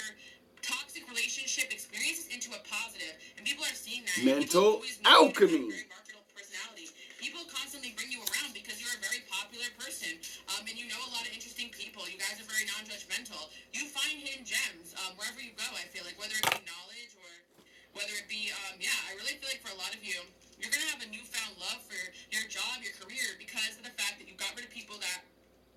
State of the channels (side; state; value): both; identical; correlation 1.00